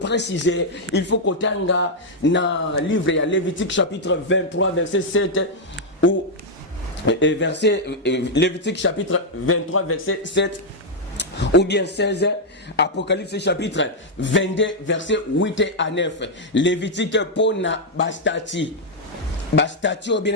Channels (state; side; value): normal; both; correlation -0.02